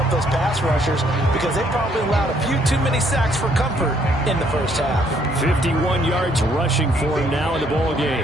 up those pass rushers, because they probably allowed a few too many sacks for comfort in the first half. 51 yards rushing for him now in the ball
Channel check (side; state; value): both; normal; correlation 0.67